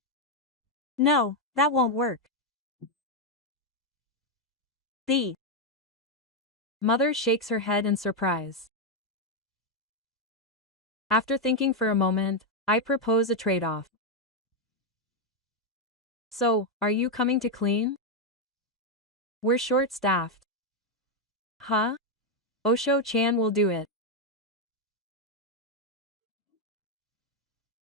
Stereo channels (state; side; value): normal; both; correlation 0.03